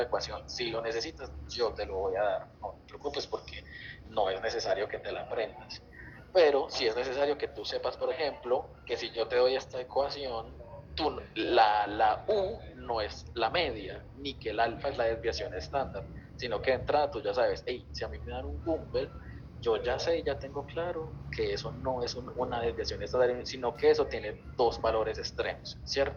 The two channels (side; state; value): both; identical; correlation 1.00